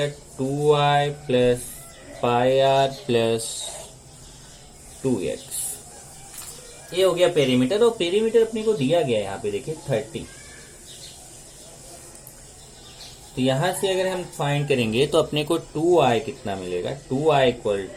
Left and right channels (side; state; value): both; identical; correlation 1.00